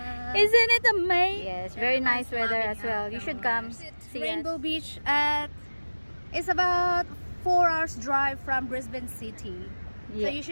Isn't it amazing? Yes, very nice weather as well. You should come see Rainbow us. Beach it's about 4 hours drive from Brisbane City. Yeah. So you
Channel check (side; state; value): both; inverted; correlation -1.00